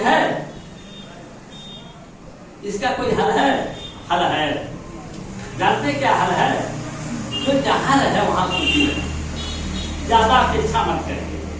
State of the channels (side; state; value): both; identical; correlation 1.00